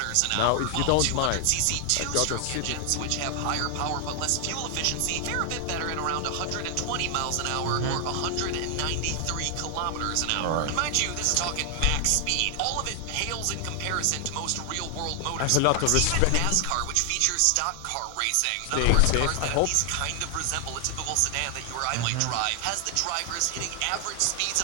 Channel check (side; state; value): both; different; correlation 0.00